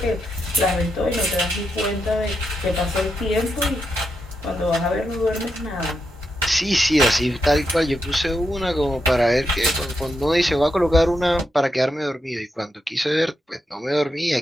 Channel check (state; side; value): normal; both; correlation 0.84